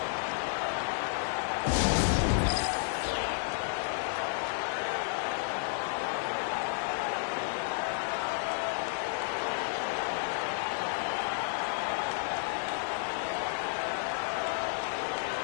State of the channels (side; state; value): right; silent; digital silence